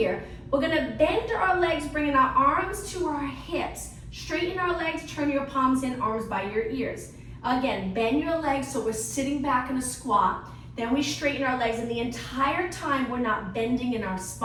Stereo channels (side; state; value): both; identical; correlation 1.00